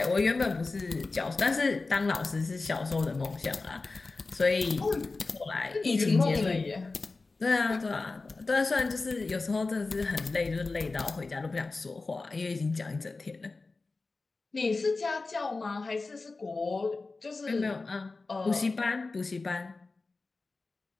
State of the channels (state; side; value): quieter; right; 3.7 dB